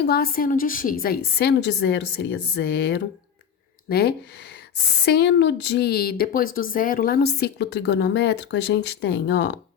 a seno de x, aí seno de zero seria zero, né? Seno de, depois do zero, lá no ciclo trigonométrico, a gente tem, ó,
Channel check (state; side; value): quieter; right; 7.9 dB